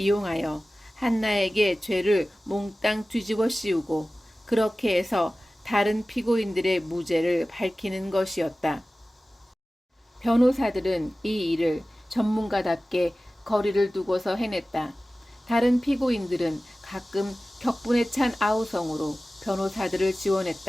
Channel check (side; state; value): both; normal; correlation 0.96